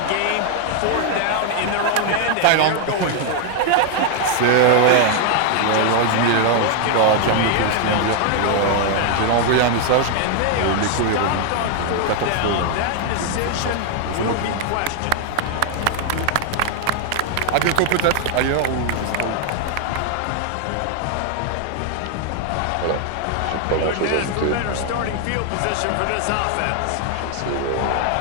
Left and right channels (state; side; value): different; both; correlation 0.00